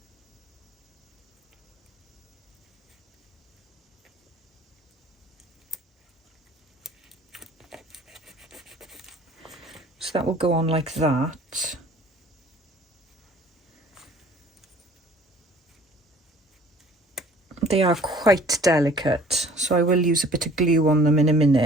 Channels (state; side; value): normal; both; correlation 0.52